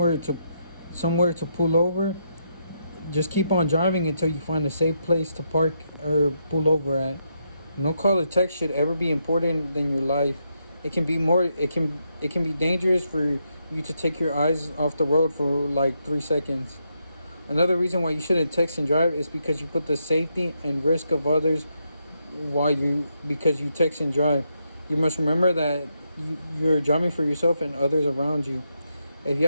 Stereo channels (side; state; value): both; inverted; correlation -0.80